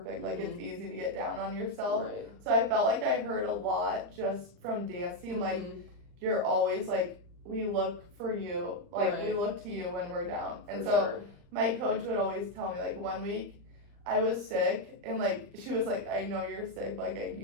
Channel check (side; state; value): left; late; 40 ms